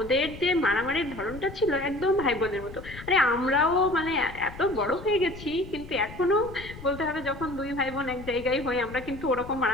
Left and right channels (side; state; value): left; noise; rumble, 14 dB below the sound